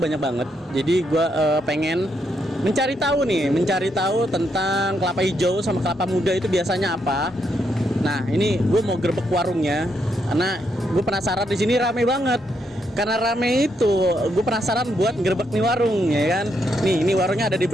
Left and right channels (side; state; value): both; normal; correlation 0.78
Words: banget. Jadi gua pengen mencari tahu tentang kelapa hijau sama kelapa muda itu biasanya apa. Nah, ini gue mau gerbek warungnya karena gue penasaran, di sini rame banget. Karena rame itu, gue penasaran buat gerbek nih warung, ya kan? Nih, ini warungnya ada di